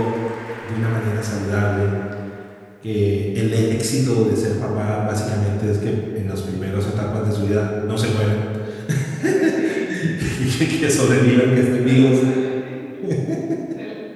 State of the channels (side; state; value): both; identical; correlation 1.00